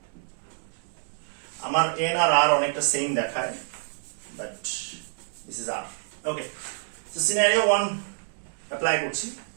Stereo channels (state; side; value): silent; left; digital silence